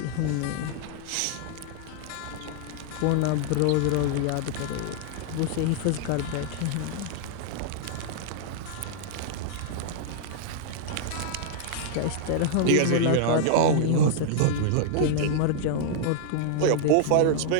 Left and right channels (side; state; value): both; different; correlation -0.01